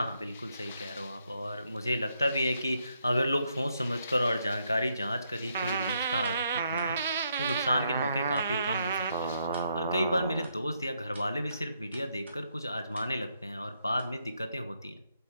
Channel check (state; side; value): inverted; both; correlation -0.77